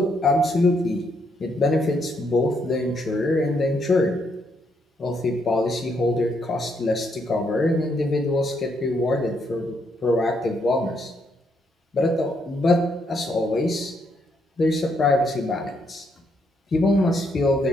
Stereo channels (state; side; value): normal; both; correlation 0.75